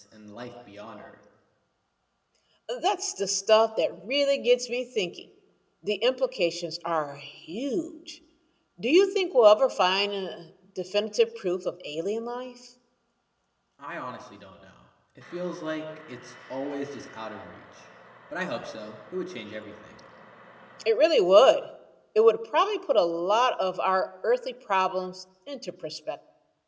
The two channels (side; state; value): both; identical; correlation 1.00